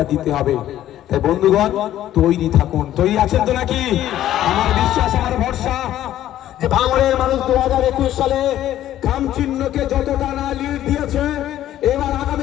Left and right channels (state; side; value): quieter; right; 12.6 dB